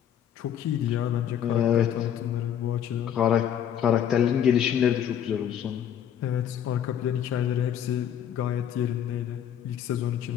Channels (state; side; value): quieter; right; 9.5 dB